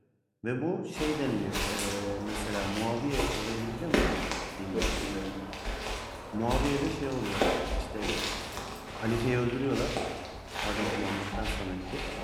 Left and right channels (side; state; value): both; identical; correlation 1.00